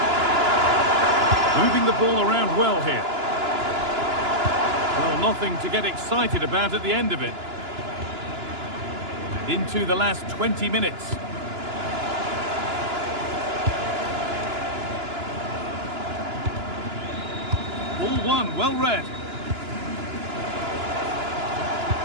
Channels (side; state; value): left; late; 2.9 ms